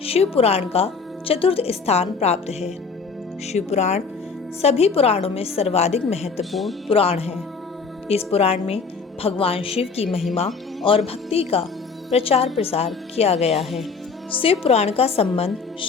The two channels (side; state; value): right; quieter; 5.0 dB